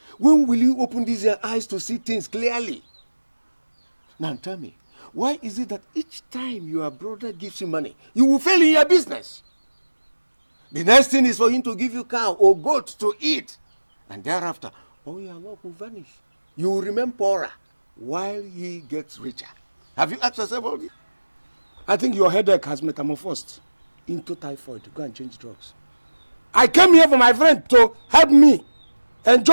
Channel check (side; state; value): both; inverted; correlation -1.00